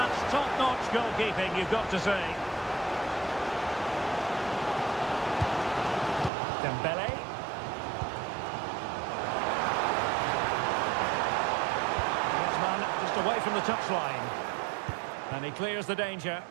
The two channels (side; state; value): left; drops out; at 6.3 s